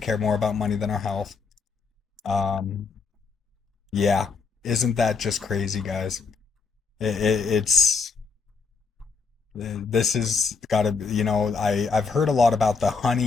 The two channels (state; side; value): quieter; right; 4.9 dB